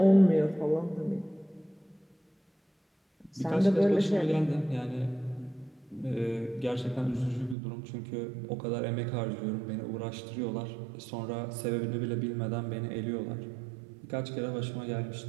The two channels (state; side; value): drops out; left; at 7.6 s